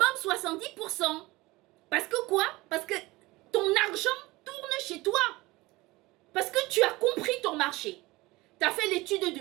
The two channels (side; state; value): left; quieter; 21.0 dB